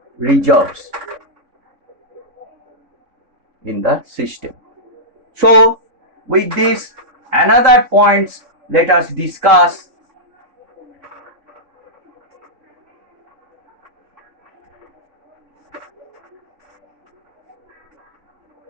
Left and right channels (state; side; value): late; left; 3.6 ms